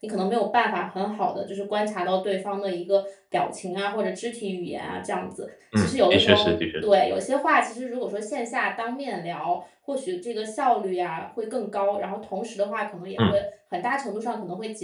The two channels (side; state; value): both; identical; correlation 1.00